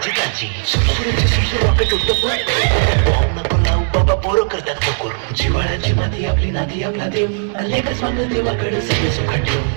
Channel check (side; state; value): left; silent; 60 dB below the other